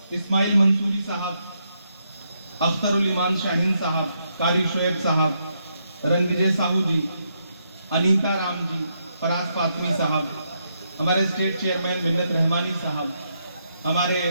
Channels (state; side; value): inverted; both; correlation -0.79